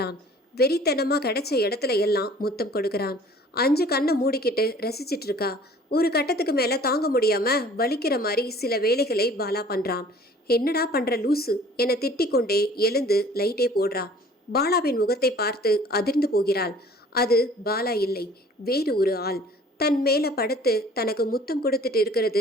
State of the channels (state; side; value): normal; both; correlation 0.51